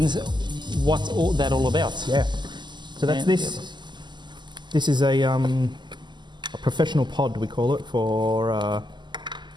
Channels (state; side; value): late; left; 0.21 ms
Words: What's that all about? Yeah. So that's this. This is a professional pod, we call it, for